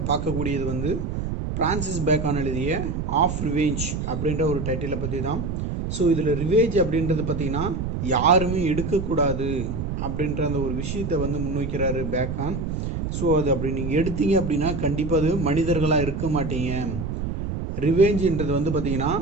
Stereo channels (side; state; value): right; noise; rumble, 3 dB below the sound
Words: பார்க்கக்கூடியது வந்து பிரான்சிஸ் பேக்கான் எழுதிய ஆஃப் ரிவேஞ்ச் அப்படின்ற ஒரு டைட்டிலை பற்றி தான். ஸோ இதில் ரிவேஞ்ச் அப்படின்றது பார்த்திங்கன்னா யாருமே எடுக்கக்கூடாது அப்படின்ற அந்த ஒரு விஷயத்தை வந்து முன்வைக்கிறாரு பேக்கான். ஸோ அது அப்படி நீங்கள் எடுத்தீங்க அப்படின்னா கண்டிப்பாக அது மனிதர்களாக இருக்க மாட்டீங்க. ரிவேஞ்சுன்றது வந்து பார்த்திங்கன்னா